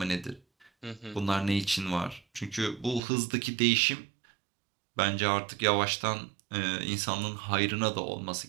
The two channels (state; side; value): drops out; left; at 3.0 s